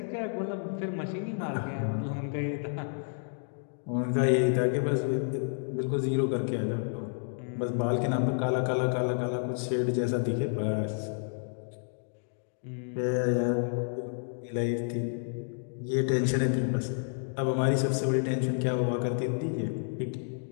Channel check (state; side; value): silent; right; digital silence